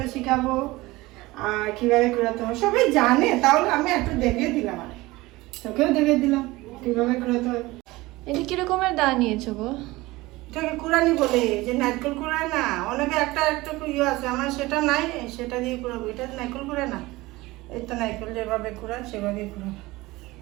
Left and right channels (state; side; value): quieter; left; 20.2 dB